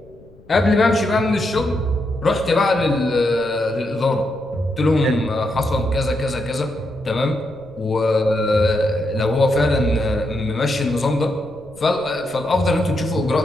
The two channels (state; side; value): noise; left; rumble, 25 dB below the sound